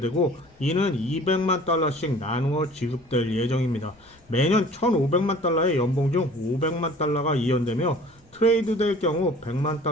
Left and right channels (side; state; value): left; noise; rumble, 30 dB below the sound